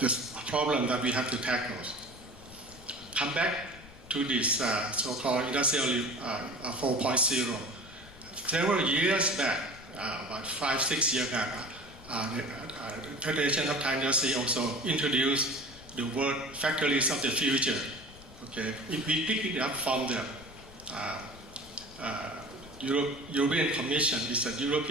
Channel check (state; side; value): noise; left; rumble, 20 dB below the sound